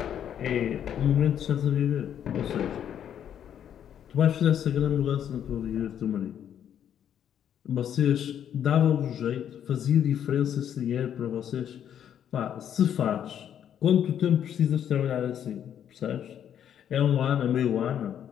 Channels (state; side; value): quieter; right; 9.5 dB